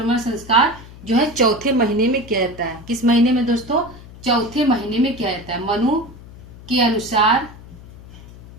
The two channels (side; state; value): left; noise; hum, 18 dB below the sound